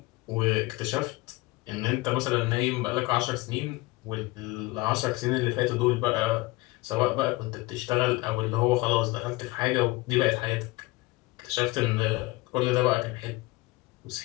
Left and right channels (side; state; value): right; quieter; 21.2 dB